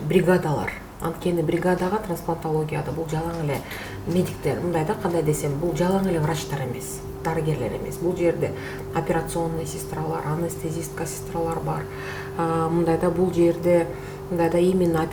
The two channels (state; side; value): identical; both; correlation 1.00